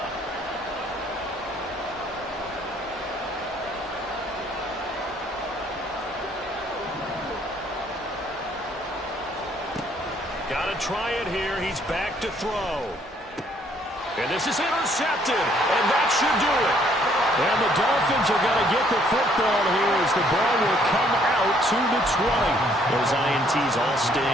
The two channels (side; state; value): both; normal; correlation 0.65